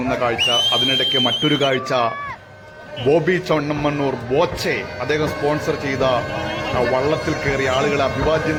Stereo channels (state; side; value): identical; both; correlation 1.00